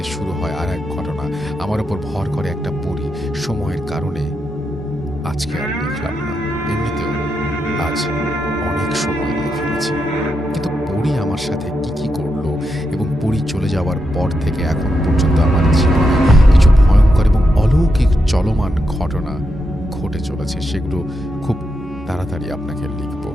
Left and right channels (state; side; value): normal; both; correlation 0.84